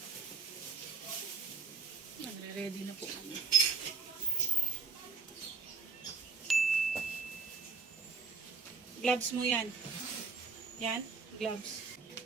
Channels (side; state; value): left; quieter; 4.8 dB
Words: Nagre-ready na po kami. Gloves mo yan. Yan, gloves.